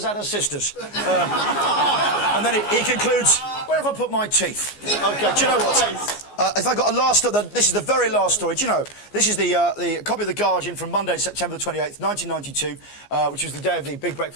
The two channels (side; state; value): right; late; 14 ms